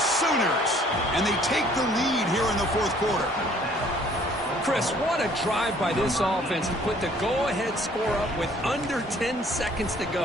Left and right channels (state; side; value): normal; both; correlation 0.58